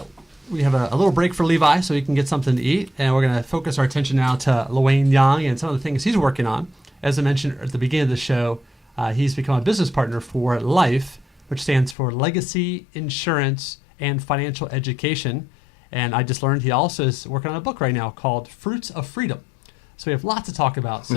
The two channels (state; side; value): drops out; right; at 12.0 s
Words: We have a little break for Levi so he can get something to eat, and we're going to focus our attention now to LeWayne Young and some of the things he's working on. As I mentioned at the beginning of the show, he's become a business partner for LIFE, which stands for Legacy, Insurance, and Financial Education. And I just learned he also is working on a book right now called Fruits of Freedom. So we have lots to talk about.